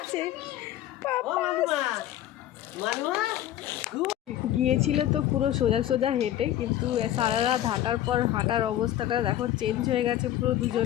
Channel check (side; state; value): right; quieter; 12.7 dB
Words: পাপা গিয়েছিল তো পুরো সোজা সোজা হেঁটে, কিন্তু সারা রাত হাঁটার পর হাঁটার অবস্থাটা দেখো চেঞ্জ হয়ে গেছে পুরো